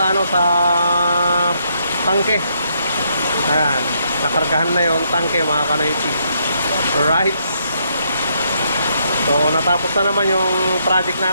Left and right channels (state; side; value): inverted; both; correlation -0.74